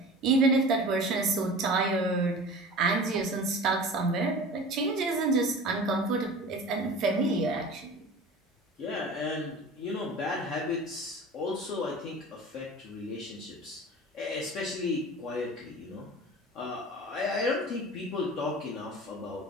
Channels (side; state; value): both; normal; correlation 0.38